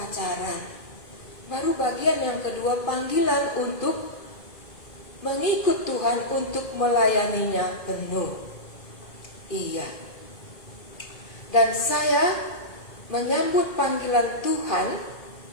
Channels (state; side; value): late; right; 2.4 ms